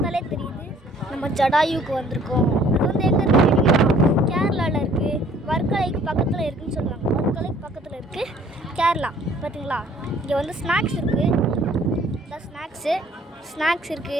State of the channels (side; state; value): both; normal; correlation 0.57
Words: தெரியுது நம்ம ஜடாயுக்கு வந்திருக்கோம். அது வந்து எங்கே இருக்குது? கேரளாவில் இருக்குது. வர்க்கலைக்கு பக்கத்தில் இருக்குதுன்னு சொல்லுவாங்க. வர்க்கலைக்கு பக்கத்தில் இருக்குது கேரளா. பார்த்தீங்களா, இங்கே வந்து ஸ்நாக்ஸ் இருக்குது. இந்த ஸ்நாக்ஸ்